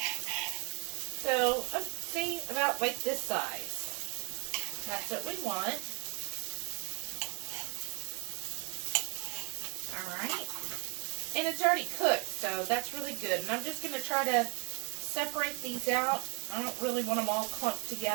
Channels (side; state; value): left; quieter; 33.0 dB